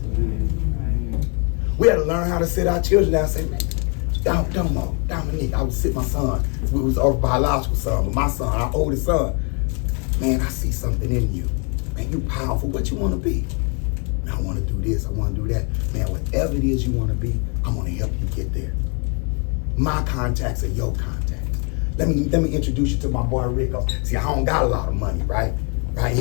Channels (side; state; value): right; quieter; 36.5 dB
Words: We had to learn how to sit our children down and say, Dominique, I would sit my son. We was our biological son, but my son, our oldest son. Man, I see something in you. Man, you powerful. What you want to be? Man, I want to do this. I want to do that. Man, whatever it is you want to be, I'm going to help you get there. My contacts are your contacts. Let me introduce you to my boy Rick. See, I don't got a lot of money, right? Right?